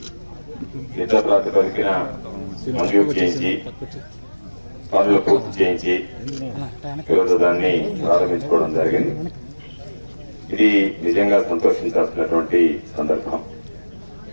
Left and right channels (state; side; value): inverted; both; correlation -1.00